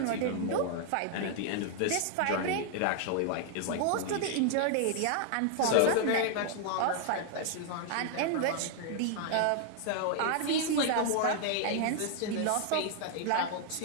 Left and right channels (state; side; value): different; both; correlation 0.00